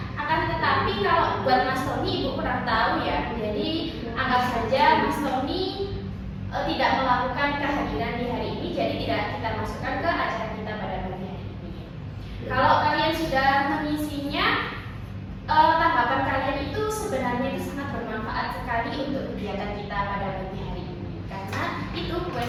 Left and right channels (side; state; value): both; identical; correlation 1.00